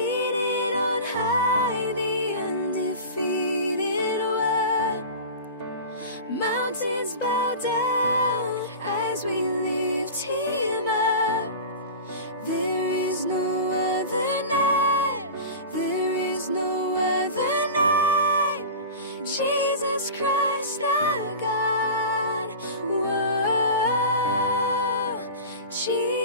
on high, the undefeated one. Mountains bow down as we lift him up. There is no other name, there is no other name, Jesus Christ our God. Whoa,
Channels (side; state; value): both; inverted; correlation -0.33